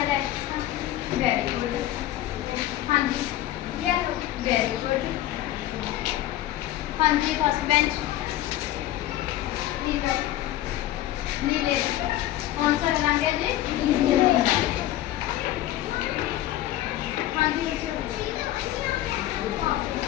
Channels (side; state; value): right; quieter; 14.1 dB